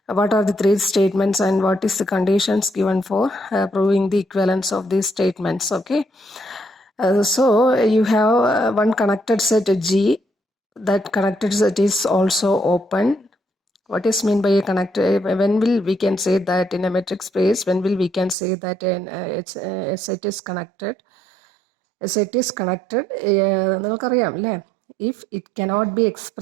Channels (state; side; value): drops out; left; at 18.4 s